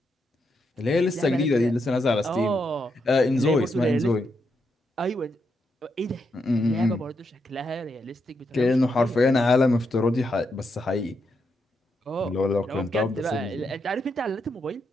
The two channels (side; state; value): both; normal; correlation 0.81